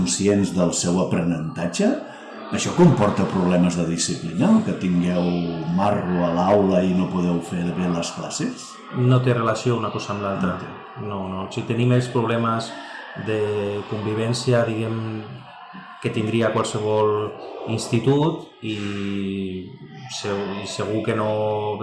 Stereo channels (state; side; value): identical; both; correlation 1.00